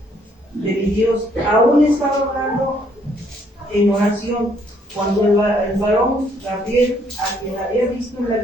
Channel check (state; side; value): normal; both; correlation 0.67